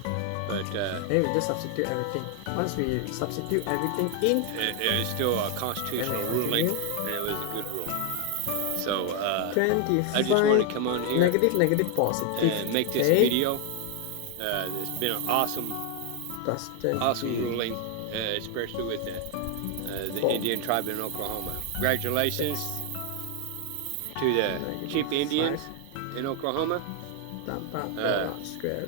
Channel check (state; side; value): different; both; correlation 0.00